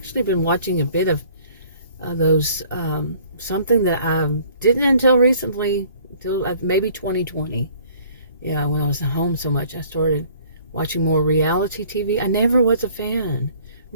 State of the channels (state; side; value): inverted; both; correlation -0.55